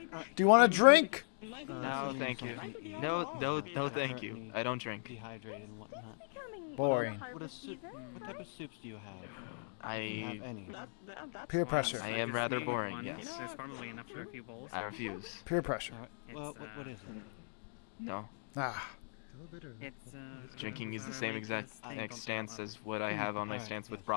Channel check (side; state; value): right; silent; digital silence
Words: Do you want a drink? No, thank you. No, thank you. I don't drink. Dehydrated and whatnot. Boring. What type of soups do you have? I Any? Peer pressure. I am rather boring, One. yes. There's probably enough for a few bowls. I refuse. Peer pressure. Well, It's, what is it? No. Ah. It's Drinking is the same exact stance as what I have on my stance with